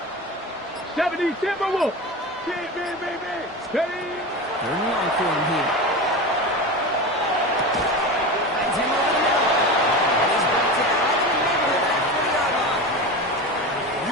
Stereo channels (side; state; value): both; normal; correlation 0.26